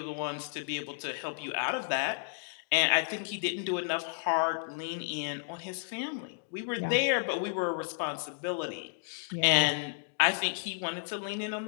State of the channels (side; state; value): right; silent; digital silence